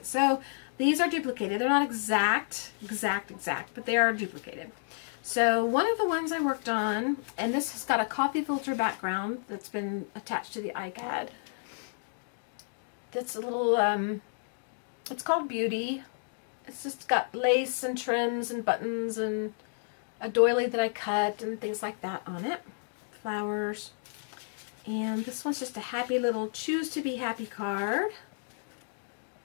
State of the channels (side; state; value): right; silent; digital silence